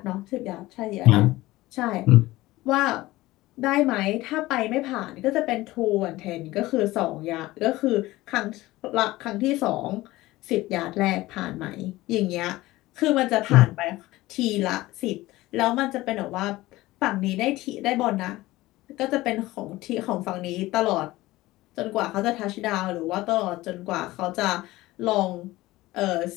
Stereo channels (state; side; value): quieter; right; 18.2 dB